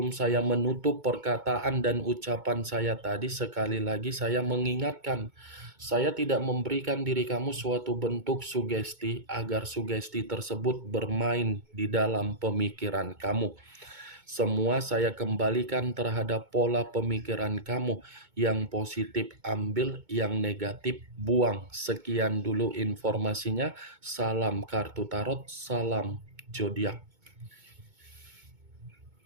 saya menutup perkataan dan ucapan saya tadi, sekali lagi saya mengingatkan, saya tidak memberikan diri kamu suatu bentuk sugesti agar sugesti tersebut bermain di dalam pemikiran kamu. Semua saya kembalikan terhadap pola pemikiran kamu. Yang positif ambil, yang negatif buang. Sekian dulu informasinya. Salam kartu tarot, salam zodiak.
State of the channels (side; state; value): left; late; 2.2 ms